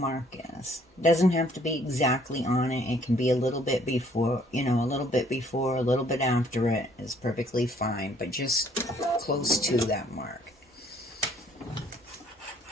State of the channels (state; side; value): normal; both; correlation 0.61